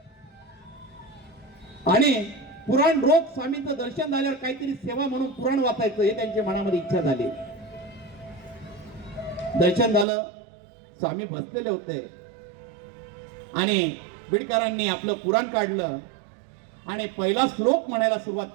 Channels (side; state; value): left; drops out; at 10.1 s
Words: आणि पुराण रोज स्वामींचं दर्शन झाल्यावर काहीतरी सेवा म्हणून पुराण वाचायचं, हे त्यांच्या मनामध्ये इच्छा झाली. दर्शन झालं, स्वामी बसलेले होते आणि बिडकरांनी आपलं पुराण काढलं आणि पहिला श्लोक म्हणायला सुरुवात